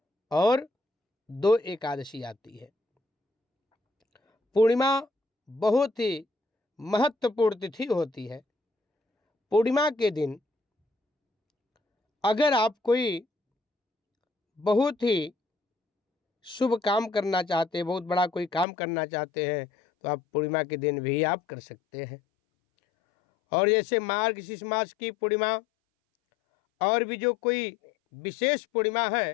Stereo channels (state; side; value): drops out; right; at 18.7 s